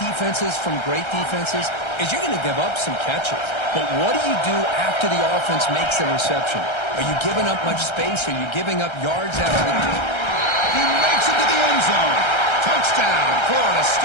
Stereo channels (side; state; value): right; late; 1.3 ms